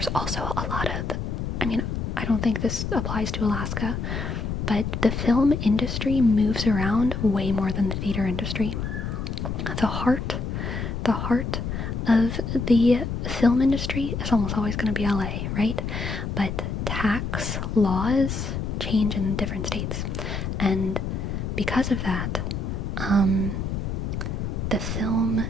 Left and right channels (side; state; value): left; noise; rumble, 3 dB below the sound